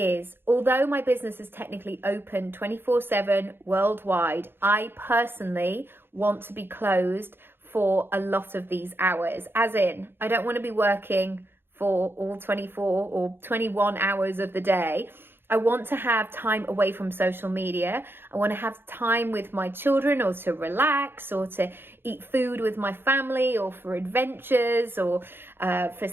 although my business is technically open 24/7 worldwide, I personally want to be closed for a lot of these hours. As in, I don't want to be working for all 24 or 21 hours of the day. I want to have time away from social media. I want to have time with my children, or to relax, or to eat food with my family, or for adventures, or for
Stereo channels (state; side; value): late; left; 0.10 ms